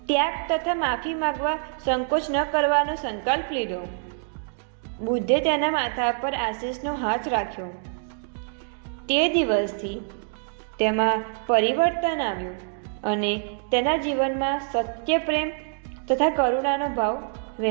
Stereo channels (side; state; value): left; silent; digital silence